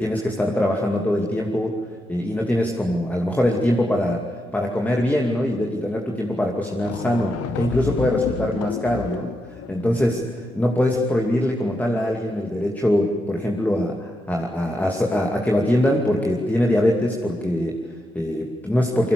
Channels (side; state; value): both; normal; correlation 0.84